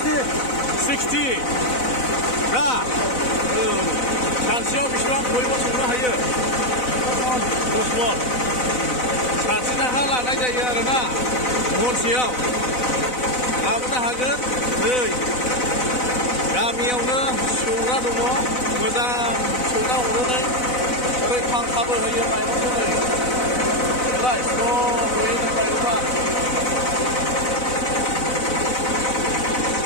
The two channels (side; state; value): right; late; 4.0 ms